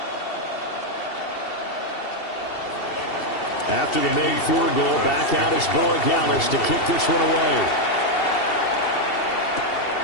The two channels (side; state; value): right; late; 2.7 ms